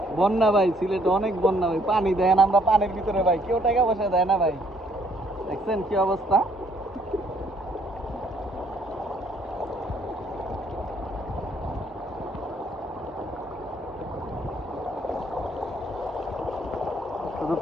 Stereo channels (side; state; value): both; normal; correlation 0.65